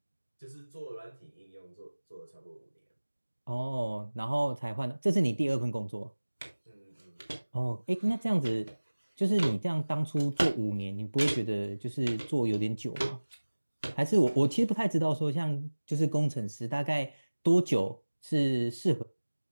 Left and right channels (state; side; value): inverted; both; correlation -1.00